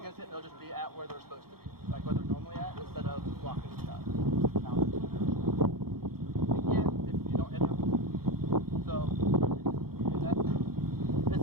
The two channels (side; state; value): left; late; 0.94 ms